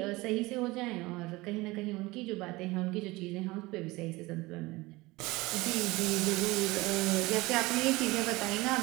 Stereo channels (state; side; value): quieter; left; 21.3 dB